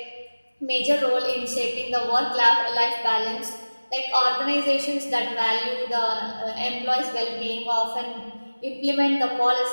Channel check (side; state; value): both; inverted; correlation -1.00